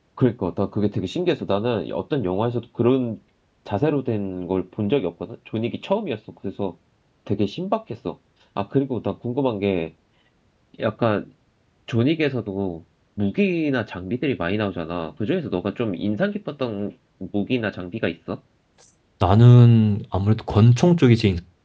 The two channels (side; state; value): both; identical; correlation 1.00